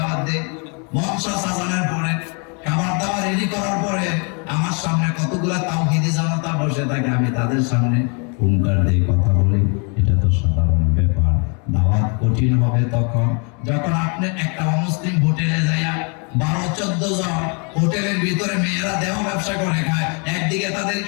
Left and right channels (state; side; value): quieter; right; 36.1 dB